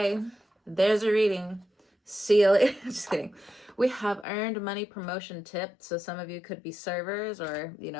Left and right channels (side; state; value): right; drops out; at 4.2 s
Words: there's a reading. See you later. Just kidding. We have earned money promotion tips. So some of you could be servers, or, you